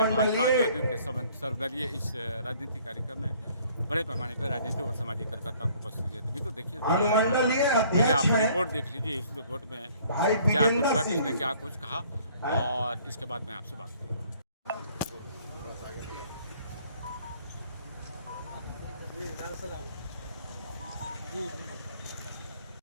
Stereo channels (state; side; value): inverted; both; correlation -0.58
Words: जदयू के सर्वदलीय इस राजनीतिक कार्यक्रम में बड़े पैमाने पर राजनीतिक और सामाजिक कार्यकर्ताओं को उपस्थित है। तभी तो देखिए, पहले आप रिपोर्ट देख लीजिए। इस रिपोर्ट में क्या कुछ हुआ, किसने क्या कुछ कहा, और इसके बाद मैं आपसे बात करूँगा।